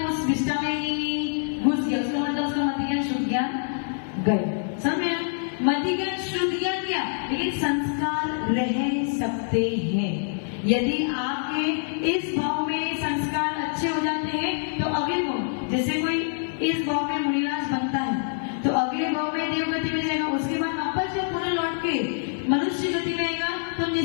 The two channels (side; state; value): right; silent; 61 dB below the other